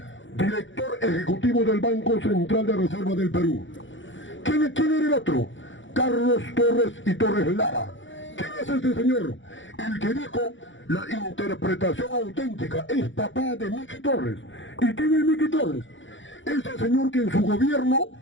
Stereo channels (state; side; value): late; right; 0.55 ms